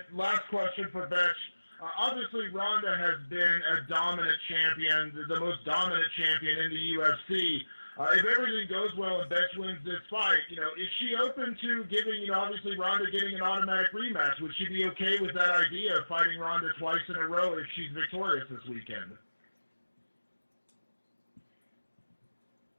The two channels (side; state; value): both; inverted; correlation -1.00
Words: last question for Bethe. Obviously, Ronda has been a dominant champion, the most dominant champion in the UFC. If everything goes well and Bethe wins this fight, is she open to giving, obviously Ronda getting an automatic rematch? Would she be okay with that idea of fighting Ronda twice in a row if she's victorious this weekend?